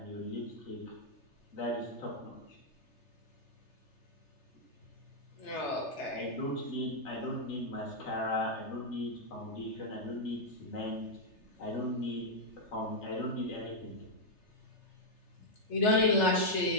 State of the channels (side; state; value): right; late; 3.3 ms